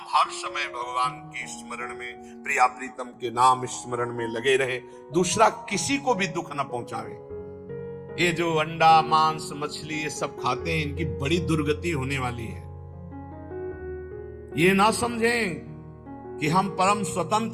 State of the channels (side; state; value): both; identical; correlation 1.00